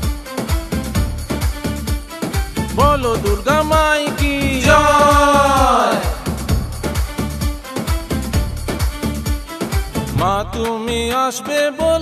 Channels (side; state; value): both; identical; correlation 1.00